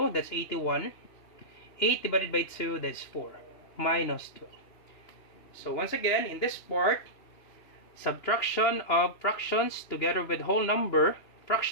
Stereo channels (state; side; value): late; right; 2.9 ms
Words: that's 81. 8 divided by 2, that's 4. Minus 12. So once again, in this part, subtraction of fractions together with whole number,